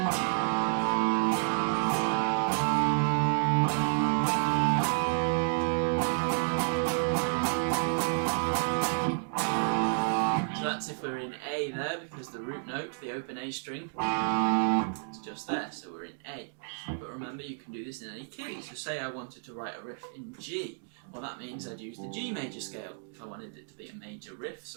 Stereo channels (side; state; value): left; silent; digital silence